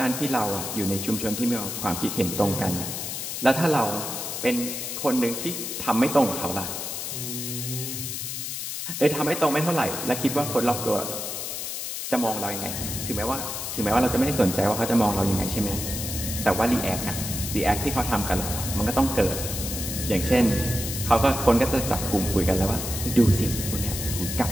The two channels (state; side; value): noise; left; hiss, 5 dB below the sound